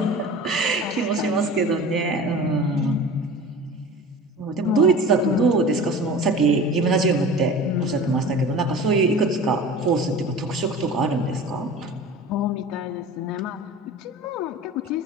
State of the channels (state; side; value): normal; both; correlation 0.37